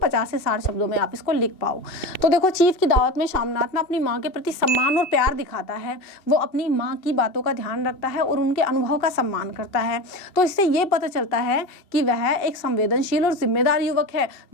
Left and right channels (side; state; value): right; late; 2.7 ms